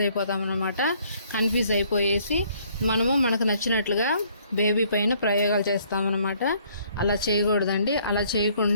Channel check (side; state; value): both; inverted; correlation -0.63